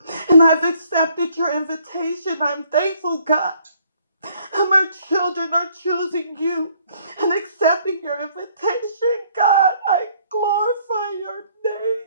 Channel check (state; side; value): inverted; both; correlation -0.63